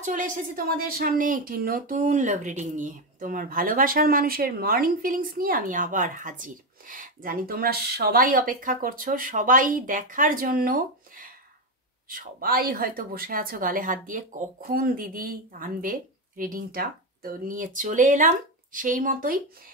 চলে এসেছি তোমাদের সামনে একটি নতুন লাভ রিডিং নিয়ে। তোমার ভালোবাসার মানুষের মর্নিং ফিলিংস নিয়ে আমি আবার হাজির। জানি তোমরা সবাই অপেক্ষা করছো, সবাই দেখার জন্য। সবাই হয়তো বসে আছো গালে হাত দিয়ে, কখন দিদি আনবে রিডিংটা। তো নিয়ে চলে এলাম সেই মতোই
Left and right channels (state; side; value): normal; both; correlation 0.10